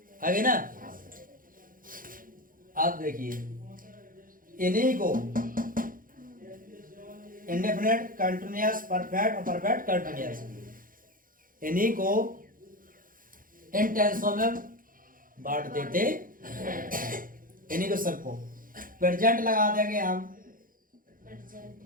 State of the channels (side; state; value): left; late; 0.40 ms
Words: आगे ना। आप देखिए, इन्हीं को इंडेफिनिट, कंटिन्यूअस, परफेक्ट और परफेक्ट कंटिन्यूअस, इन्हीं को इन टेंसों में बांट देते, इन्हीं को सबको प्रेजेंट लगा देंगे हम,